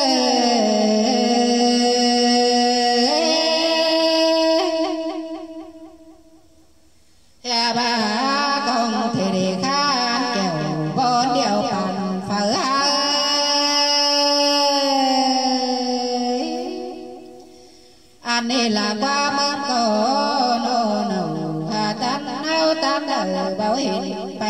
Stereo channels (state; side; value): identical; both; correlation 1.00